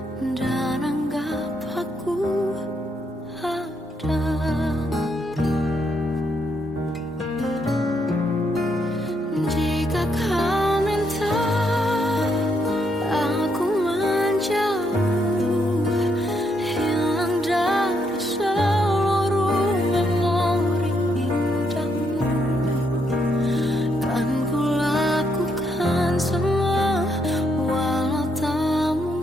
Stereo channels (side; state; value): both; normal; correlation 0.76